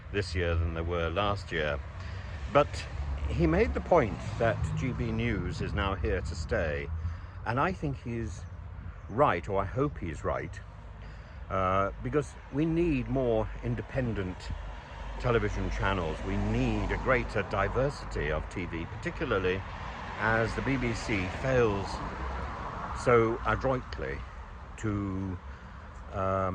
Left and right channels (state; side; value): identical; both; correlation 1.00